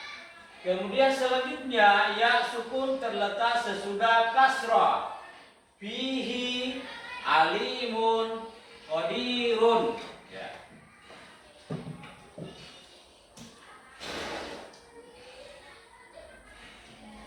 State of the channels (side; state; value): both; identical; correlation 1.00